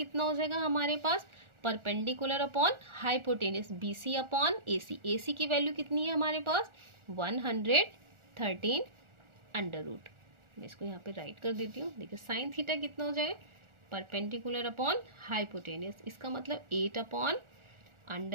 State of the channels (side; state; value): left; late; 1.4 ms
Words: हो जाएगा हमारे पास, perpendicular upon hypotenuse BC upon AC। AC की वैल्यू कितनी है हमारे पास, 113 अंडर रूट। मैं इसको यहाँ पे राइट कर देती हूँ। देखिए, साइन थीटा कितना हो जाएगा, परपेंडिकुलर अपॉन हाइपोटेनियस, इसका मतलब 8 upon